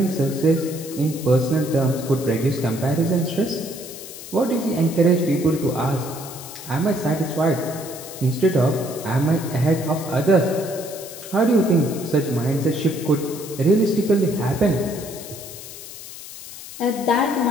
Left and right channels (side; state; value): left; noise; hiss, 13 dB below the sound